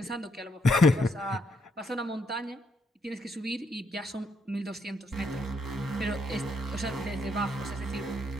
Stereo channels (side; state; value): both; normal; correlation 0.75